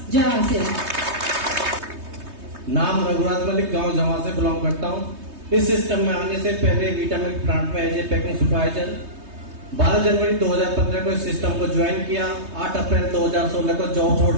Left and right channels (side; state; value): left; late; 3.2 ms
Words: जय आरसीएम। नाम रघुराज मलिक, गांव जमा से बिलोंग करता हूं। इस सिस्टम में आने से पहले विटामिन प्लांट में एज ए पैकिंग सुपरवाइजर 12 जनवरी 2015 को इस सिस्टम को ज्वाइन किया। 8 अप्रैल 2016 को जॉब छोड़